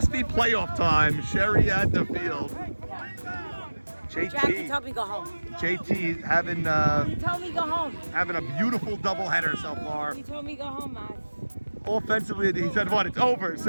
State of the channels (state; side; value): inverted; both; correlation -1.00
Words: be playoff time. Sherry at the field. Jack, you told me go home. JT having You told me go home. having a beautiful doubleheader so far. You told me go home, man. Offensively, he said, "What? It's over.